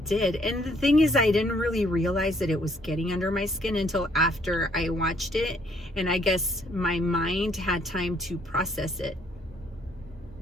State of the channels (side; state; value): both; normal; correlation 0.66